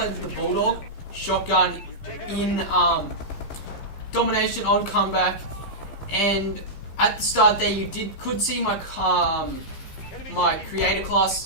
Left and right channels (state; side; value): late; right; 15 ms